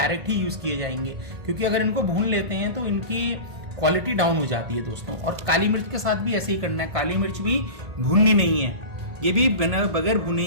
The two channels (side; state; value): left; late; 1.5 ms